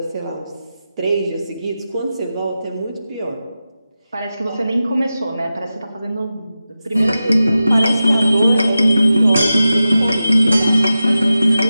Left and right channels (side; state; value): both; inverted; correlation -0.93